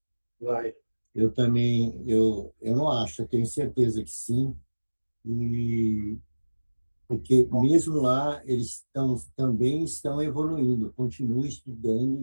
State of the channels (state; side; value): inverted; both; correlation -1.00